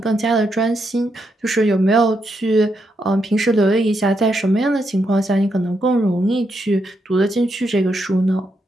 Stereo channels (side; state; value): both; normal; correlation 0.81